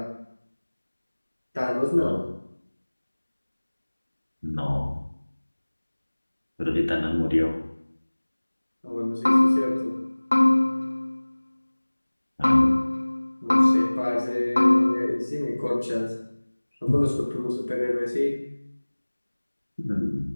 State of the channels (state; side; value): inverted; both; correlation -1.00